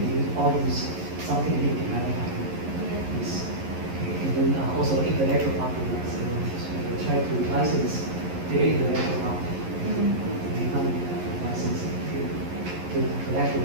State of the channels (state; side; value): late; left; 11 ms